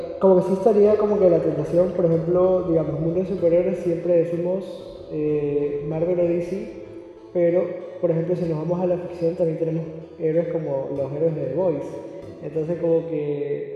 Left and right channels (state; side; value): identical; both; correlation 1.00